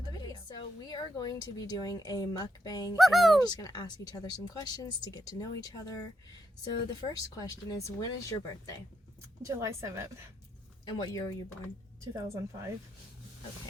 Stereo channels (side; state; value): both; normal; correlation 0.80